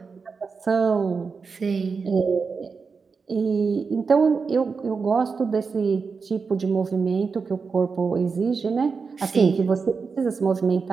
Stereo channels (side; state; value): left; quieter; 5.1 dB